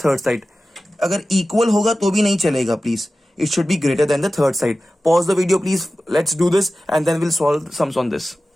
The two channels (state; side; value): normal; both; correlation 0.95